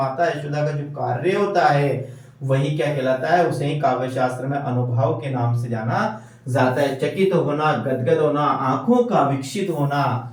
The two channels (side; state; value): both; identical; correlation 1.00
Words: यशोदा का जो कार्य होता है, वही क्या कहलाता है? उसे ही काव्य शास्त्र में अनुभव के नाम से जाना जाता है। चकित होना, गदगद होना, आंखों का विकसित होना,